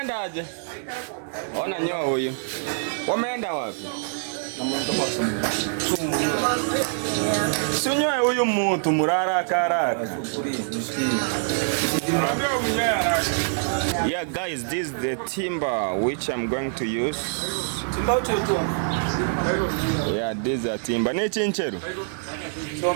aje? Ona nyoa huyu. Wameenda wapi? Sunyoe huyu mtu murara karaka. Yeah guys, this is the timber which I'm going to use. Yeah, this is a timber. Ne chincheru.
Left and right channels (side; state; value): left; silent; digital silence